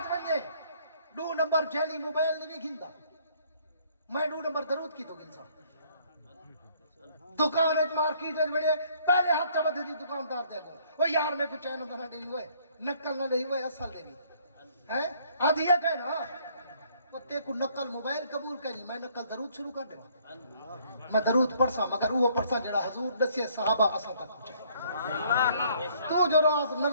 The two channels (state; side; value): inverted; both; correlation -0.63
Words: بنجے 2 نمبر جیلی موبائل نہیں گھندا میں 2 نمبر درود کی تو گنسا دکان ایک مارکیٹ ایک بڑے پہلے ہاتھ چا بدھے دی دکاندار دے گو وہ یار میں کچھ چینہ نہ گئی ہوئے نکل نہ گئی ہوئے اصل دے بھی آدھی ہے کہنا تے کو نقل موبائل قبول کرنی میں نقل درود شروع کر دے میں درود پڑھسا مگر وہ پڑھسا جڑا حضور دسے صحابہ اساں تک پہنچے تو جو راز